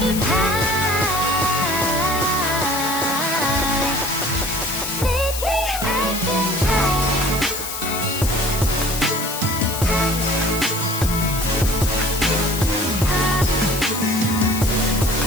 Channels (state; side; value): noise; left; hiss, 6 dB below the sound